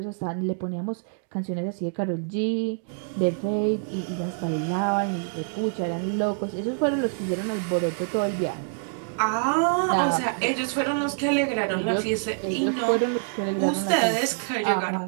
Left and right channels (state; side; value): silent; left; digital silence